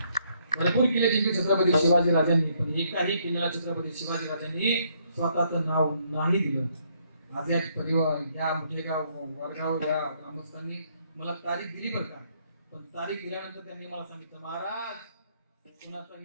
भरपूर किल्ले जिंकले छत्रपती शिवाजी राजांनी, पण एकाही किल्ल्याला छत्रपती शिवाजी राजांनी स्वतःचं नाव नाही दिलं. आज या परिवार या मुठेगाव वडगाव या ग्रामस्थांनी मला तारीख दिली बरं का, पण तारीख दिल्यानंतर त्यांनी मला सांगितलं महाराज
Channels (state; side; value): inverted; both; correlation -0.70